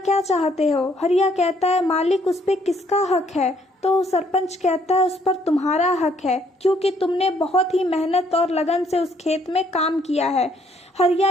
चाहते हो? हरिया कहता है, मालिक उस पे किसका हक है? तो सरपंच कहता है, उस पर तुम्हारा हक है, क्योंकि तुमने बहुत ही मेहनत और लगन से उस खेत में काम किया है। हरिया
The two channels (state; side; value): normal; both; correlation 0.67